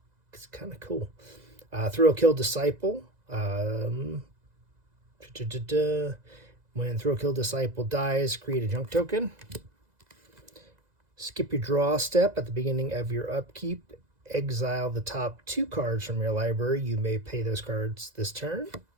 It's kind of cool. Thrill Kill Disciple. When Thrill Kill Disciple dies, create a junk token. Skip your draw step at the beginning of your upkeep. Exile the top 2 cards from your library. You may pay those cards this turn.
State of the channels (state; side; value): late; left; 2.0 ms